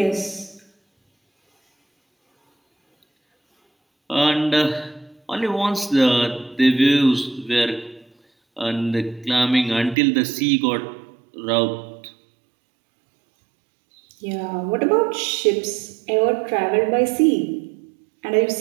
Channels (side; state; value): left; drops out; at 10.0 s